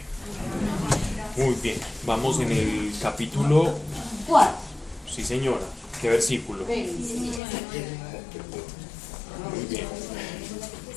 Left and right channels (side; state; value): right; drops out; at 7.4 s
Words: Muy bien, vamos en el capítulo 4. Sí, señora. ¿Qué versículo? Muy bien.